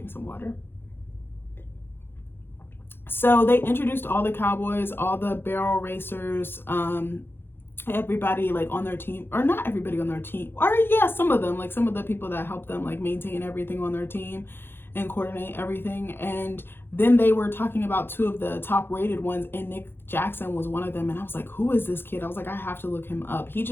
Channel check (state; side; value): late; right; 0.10 ms